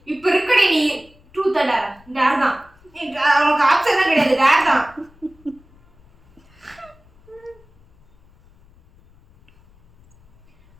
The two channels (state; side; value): noise; left; rumble, 29 dB below the sound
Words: இப்ப இருக்கடி நீ ட்ரூத் டேர் தான் அவனுக்கு ஆப்ஷன் தான் கிடையாது, டேர் தான்.